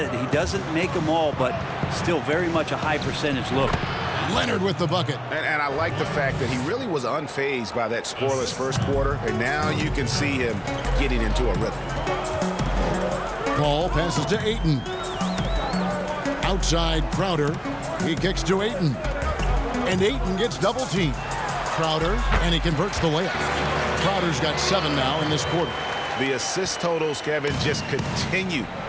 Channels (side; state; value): both; identical; correlation 1.00